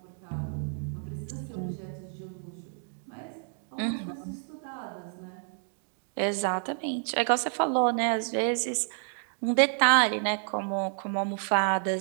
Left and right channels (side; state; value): left; silent; 58 dB below the other